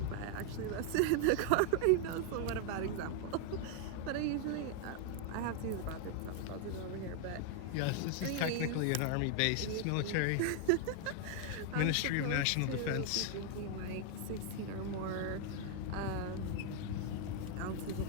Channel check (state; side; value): different; both; correlation 0.00